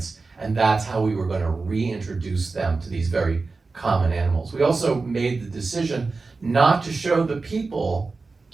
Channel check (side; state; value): left; quieter; 4.0 dB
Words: and that's how we were going to reintroduce them to these very common animals. We also made the decision not to show the people,